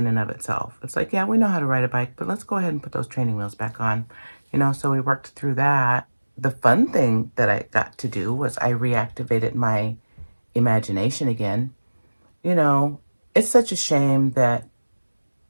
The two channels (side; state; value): both; inverted; correlation -1.00